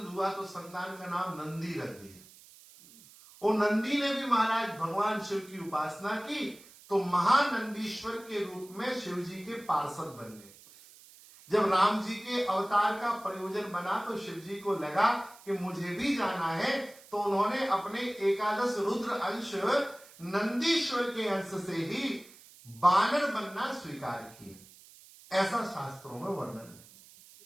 हुआ, तो संतान का नाम नंदी रख दिया। और नंदी ने भी महाराज भगवान शिव की उपासना की, तो महानंदीश्वर के रूप में शिव जी के पार्षद बन गए। जब राम जी के अवतार का प्रयोजन बना तो शिव जी को लगा कि मुझे भी जाना है, तो उन्होंने अपने 11 रुद्र अंश नंदीश्वर के अंश से ही बानर बनना स्वीकार किया, ऐसा शास्त्रों में वर्णन है।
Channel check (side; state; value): right; noise; hiss, 22 dB below the sound